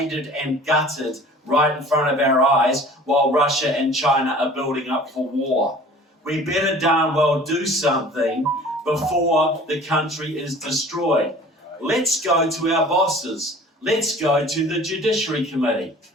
and gutted right in front of our eyes while Russia and China are building up for war. We better darn well do something before the country is destroyed. Let's go to our bosses. Let's go to the Judiciary Committee.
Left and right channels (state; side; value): normal; both; correlation 0.46